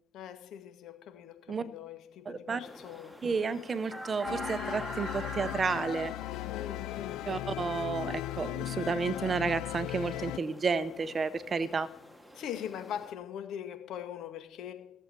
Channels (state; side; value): normal; both; correlation 0.72